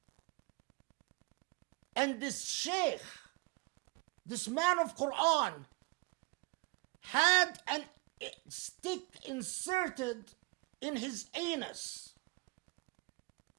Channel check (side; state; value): left; quieter; 28.4 dB